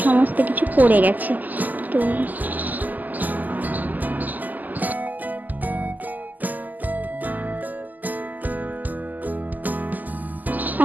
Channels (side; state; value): left; late; 0.083 ms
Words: সমস্ত কিছু পড়ে গেছে। তো